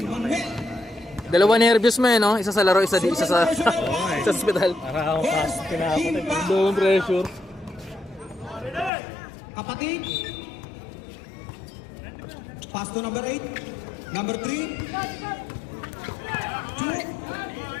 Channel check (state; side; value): drops out; right; at 8.9 s